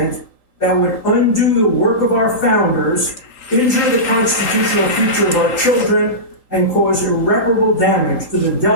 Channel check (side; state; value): right; late; 3.8 ms